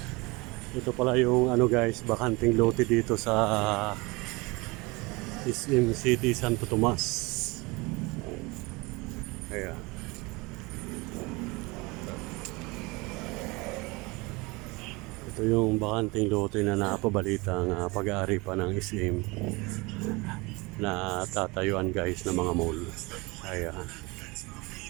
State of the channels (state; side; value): quieter; left; 25.1 dB